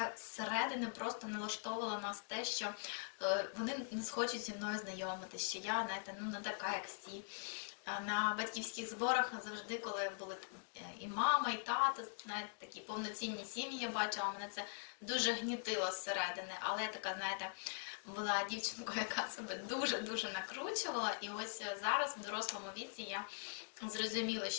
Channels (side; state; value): right; silent; digital silence